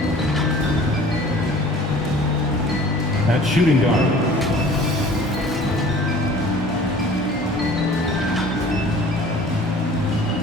At shooting guard,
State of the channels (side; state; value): both; normal; correlation 0.47